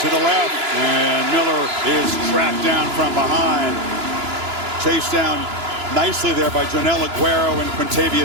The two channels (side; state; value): left; late; 2.9 ms